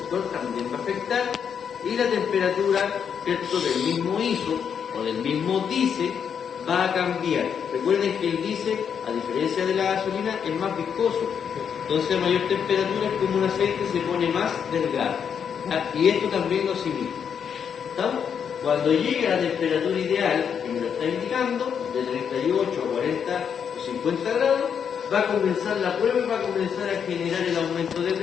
también va a afectar, y la temperatura, ¿cierto?, del mismo ISO o del mismo diésel va a cambiar. Recuerden que el diésel, a diferencia de la gasolina, es más viscoso. Entonces, a mayor temperatura, es como un aceite, se pone más delgado. ¿Ya? Y esto también lo asimila. ¿Estamos? Cuando llegue a la temperatura ideal, que me lo está indicando, de 38 a 40 o 50 grados, va a comenzar la prueba y va a comenzar a generar el aumento de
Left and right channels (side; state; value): right; quieter; 7.5 dB